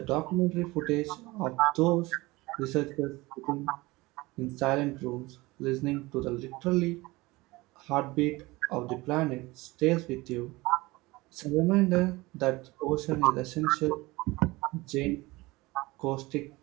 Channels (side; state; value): left; quieter; 21.5 dB